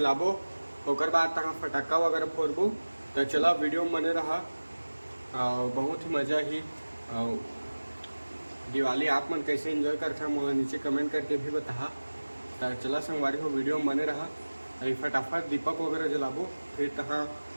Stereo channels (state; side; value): inverted; both; correlation -1.00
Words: ओकर बाद तहाँ फटाका वगैरह फोड़बो। तो चला वीडियो में बने रहा और बहुत ही मज़ा ही। और दिवाली आप मन कैसे एंजॉय करते हैं मुझे नीचे कमेंट करके भी बता। तो चला संगवारी हो वीडियो में बने रहा। अभी फटाफट दीपक वगैरह जलाबो, फिर तहाँ